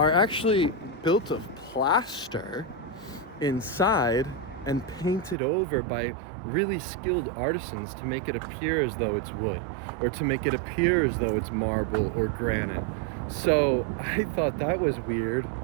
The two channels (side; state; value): left; drops out; at 5.4 s